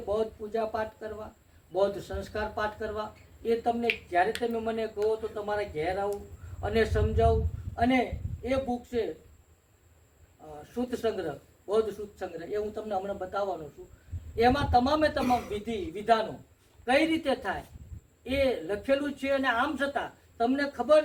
બૌદ્ધ પૂજાપાઠ કરવા, બૌદ્ધ સંસ્કાર પાઠ કરવા, એ તમને જ્યારે તમે મને કહો તો તમારે ઘેર આવું અને સમજાવું. અને એ બુક છે સૂત સંગ્રહ, બૌદ્ધ સૂત સંગ્રહ, એ હું તમને હમણાં બતાવવાનો છું. એમાં તમામે તમામ વિધિ વિધાનો કઈ રીતે થાય એ લખેલું છે. અને આમ છતાં તમને ખબર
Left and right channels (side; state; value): both; identical; correlation 1.00